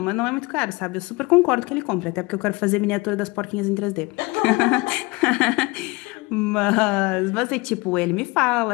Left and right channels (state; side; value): quieter; right; 24.4 dB